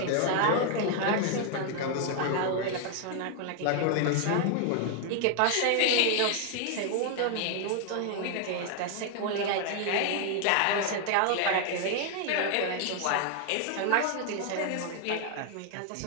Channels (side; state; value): both; different; correlation 0.00